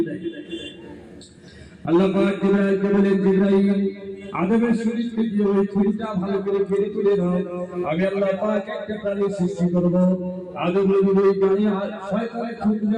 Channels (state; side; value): identical; both; correlation 1.00